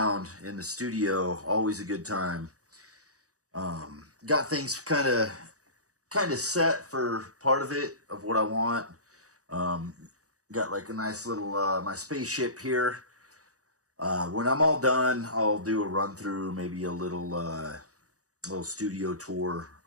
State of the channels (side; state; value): left; late; 0.66 ms